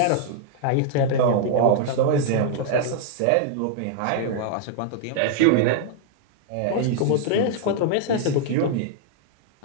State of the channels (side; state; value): both; different; correlation -0.01